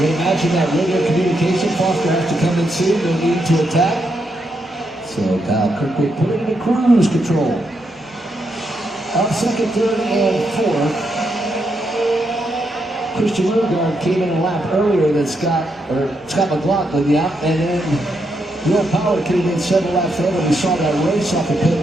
imagine that radio communication. Foster has to come in soon. No need to attack. So Kyle Kirkwood put it into cruise control. Up second, third, and fourth. Christian Lundgaard came in a lap earlier than Scott McLaughlin, yeah, and then Will Power came in several laps later. We saw that race off the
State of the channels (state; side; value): normal; both; correlation 0.81